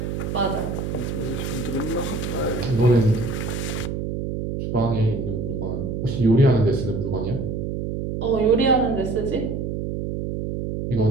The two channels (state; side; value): noise; right; hum, 3 dB below the sound